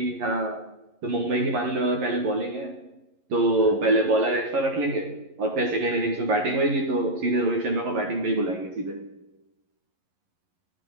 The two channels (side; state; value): left; late; 11 ms